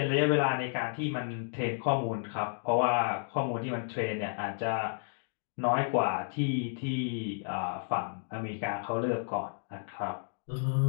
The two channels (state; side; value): silent; right; digital silence